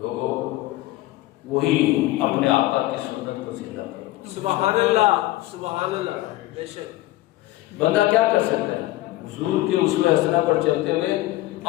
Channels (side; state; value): right; quieter; 17.1 dB